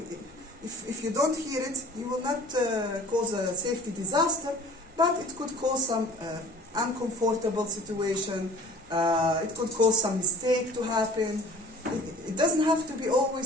if you don't hear it, you will not cause a safety disaster, but it could cause some uncomfortable situation, it could cause some mistake to happen. It doesn't have to be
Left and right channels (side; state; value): both; normal; correlation 0.47